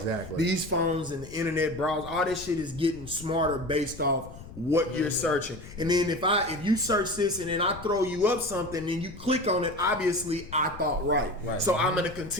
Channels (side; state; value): left; noise; rumble, 16 dB below the sound